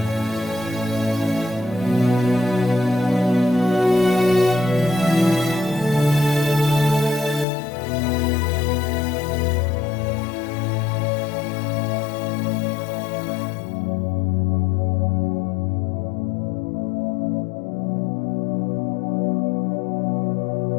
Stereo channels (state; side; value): drops out; right; at 7.5 s